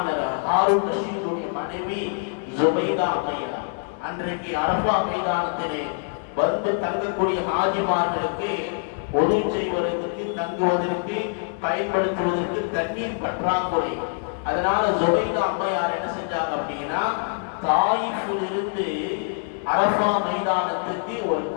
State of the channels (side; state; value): right; silent; 62 dB below the other